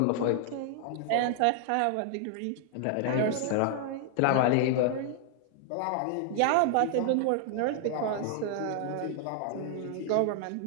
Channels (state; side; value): different; both; correlation 0.00